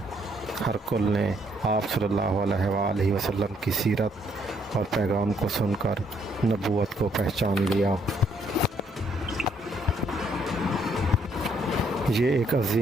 ہرقل نے آپ صلی اللہ علیہ وآلہ وسلم کی سیرت اور پیغام کو سن کر نبوت کو پہچان لیا۔ یہ ایک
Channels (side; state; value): both; normal; correlation 0.70